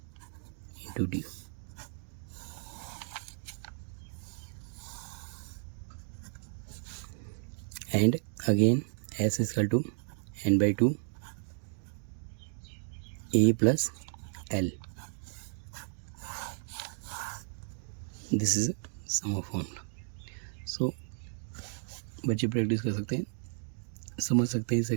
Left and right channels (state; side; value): silent; left; 55 dB below the other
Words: into d. And again s is equal to n by 2 a plus l. This is sum of formula. So बच्चे प्रैक्टिस कर सकते हैं, समझ सकते हैं इस